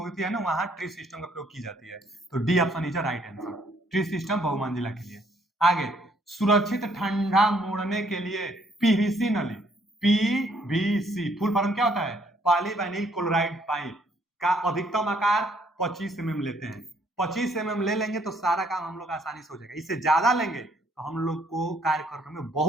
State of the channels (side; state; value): both; normal; correlation 0.66